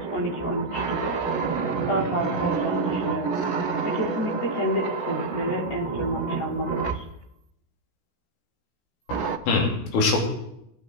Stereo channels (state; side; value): late; right; 16 ms